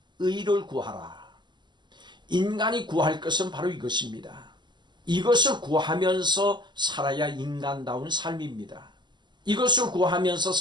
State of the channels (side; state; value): left; late; 0.22 ms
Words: 의를 구하라. 인간이 구할 것은 바로 이것입니다. 이것을 구하면서 살아야 인간다운 삶입니다. 이것을 구하면서